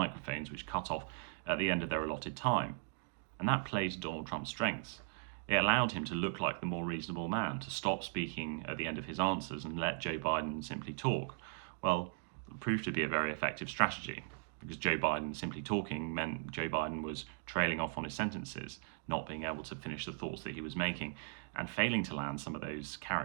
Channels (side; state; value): left; silent; digital silence